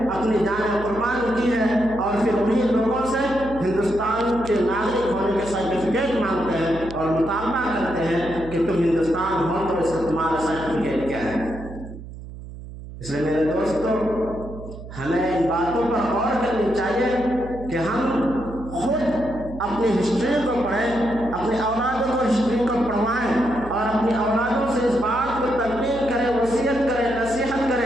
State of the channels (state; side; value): noise; right; hum, 13 dB below the sound